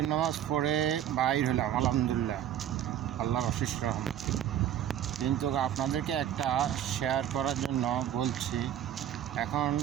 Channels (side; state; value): left; quieter; 10.8 dB